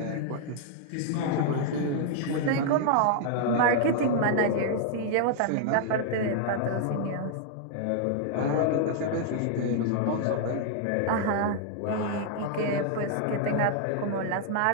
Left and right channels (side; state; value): both; different; correlation -0.01